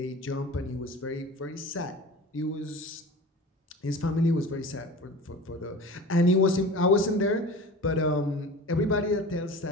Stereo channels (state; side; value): normal; both; correlation 0.37